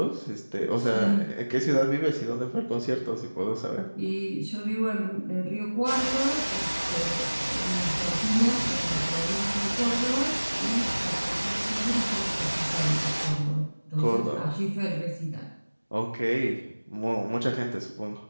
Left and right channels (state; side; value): inverted; both; correlation -1.00